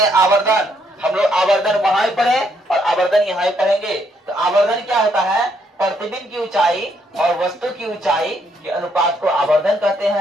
आवर्धन। हम लोग आवर्धन वहां ही पढ़े और आवर्धन यहाँ ही पढ़ेंगे। तो आवर्धन क्या होता है, प्रतिबिंब की ऊंचाई और वस्तु की ऊंचाई के अनुपात को आवर्धन कहते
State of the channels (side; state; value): both; normal; correlation 0.72